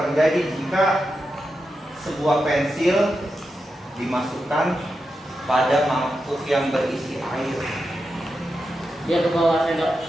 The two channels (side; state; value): both; normal; correlation 0.88